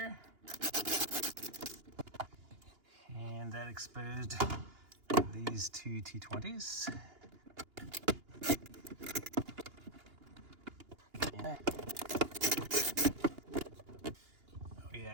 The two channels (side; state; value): left; late; 2.9 ms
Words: And that exposed these two T20s. Yeah. Oh